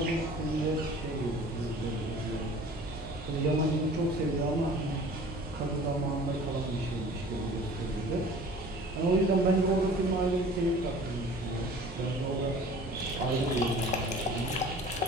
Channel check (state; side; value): normal; both; correlation 0.46